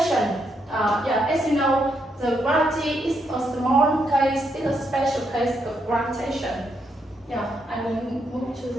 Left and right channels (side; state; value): both; normal; correlation 0.78